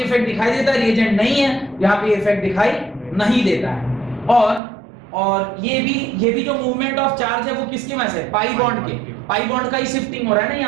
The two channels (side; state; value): left; drops out; at 4.6 s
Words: इफेक्ट दिखाई देता है, रिएजेंट नहीं है यहाँ पे इफेक्ट दिखाई नहीं देता है। और ये भी जो मूवमेंट ऑफ चार्ज है वो किसकी वजह से? पाई बॉन्ड के। पाई बॉन्ड का ही शिफ्टिंग हो रहा है ना,